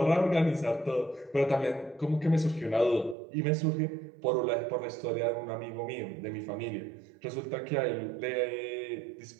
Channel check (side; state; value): left; drops out; at 3.2 s